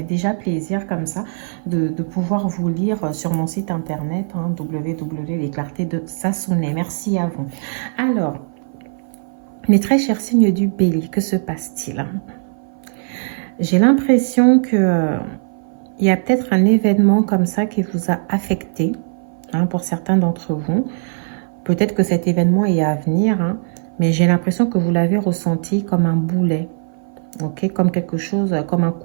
déjà plaisir comme ça de pouvoir vous lire sur mon site internet hein, www.lesclartés de Sassoune. Merci à vous. Alors, mes très chers signes du bélier, que se passe-t-il? J'ai l'impression que il y a peut-être un événement comme ça qui vous a affecté hein, pour certains d'entre vous. Peut-être que cet événement est à venir, hein, mais j'ai l'impression que vous l'avez ressenti comme un boulet, ok, comme quelque chose, comme un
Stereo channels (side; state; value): left; silent; 57 dB below the other